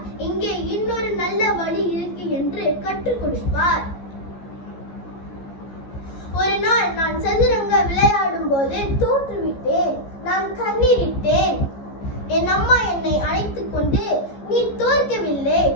இங்கே இன்னொரு நல்ல வழி இருக்கு என்று கற்றுக் கொடுப்பார். ஒரு நாள் நான் சதுரங்க விளையாடும் போது தோற்றுவிட்டேன். நான் கண்ணீரிட்டேன். என் அம்மா என்னை அழைத்துக் கொண்டு, நீ தோற்கவில்லை,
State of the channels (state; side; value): late; right; 14 ms